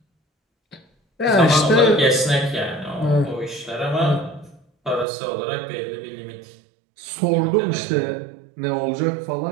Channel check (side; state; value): left; drops out; at 5.1 s